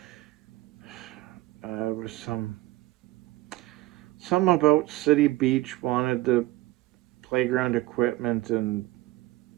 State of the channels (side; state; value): left; quieter; 17.6 dB